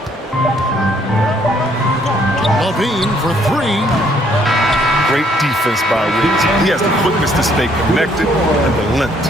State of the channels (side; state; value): both; normal; correlation 0.66